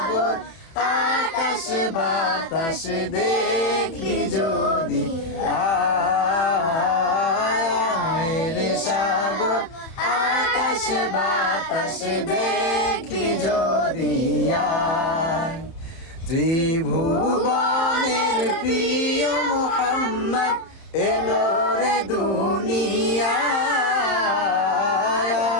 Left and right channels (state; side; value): late; right; 30 ms